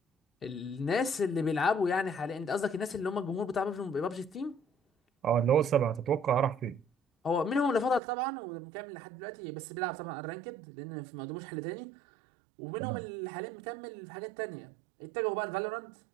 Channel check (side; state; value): left; drops out; at 8.0 s